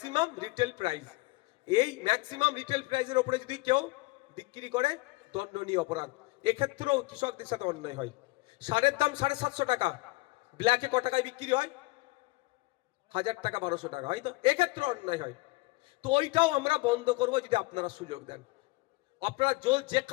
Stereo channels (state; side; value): quieter; right; 23.4 dB